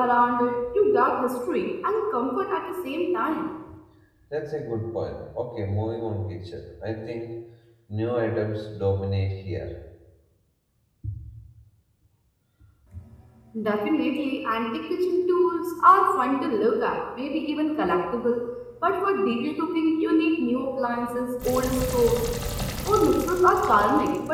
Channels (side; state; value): both; identical; correlation 1.00